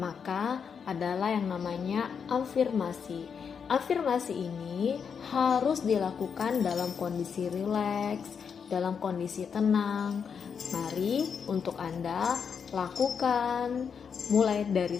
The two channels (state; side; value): quieter; right; 6.6 dB